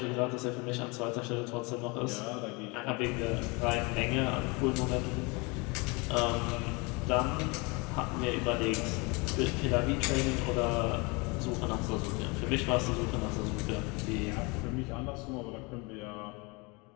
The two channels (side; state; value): right; quieter; 28.1 dB